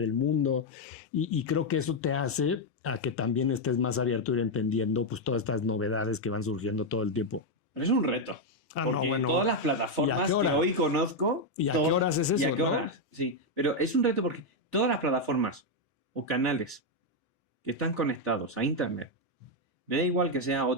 el mundo, y creo que eso te hace a que también estés más abierto a ir entendiendo pues todas estas novedades que van surgiendo todo el tiempo. Pero es un reto. No, bueno. Todas las plataformas que hoy conozco... ¿Y a qué horas es eso, no? Sí, pero es un reto porque todas las plataformas o canales que están conectados a Internet, me da igual que sean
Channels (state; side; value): normal; both; correlation 0.02